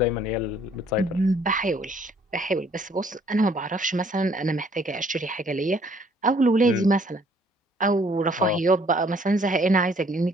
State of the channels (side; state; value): both; normal; correlation 0.61